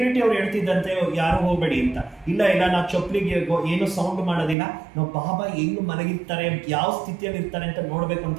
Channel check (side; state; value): left; drops out; at 4.5 s